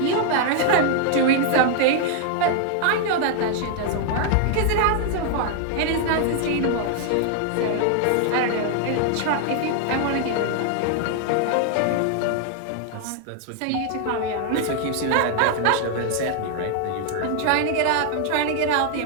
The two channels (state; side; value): different; both; correlation 0.00